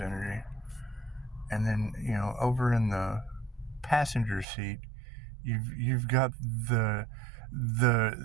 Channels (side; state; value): left; drops out; at 4.5 s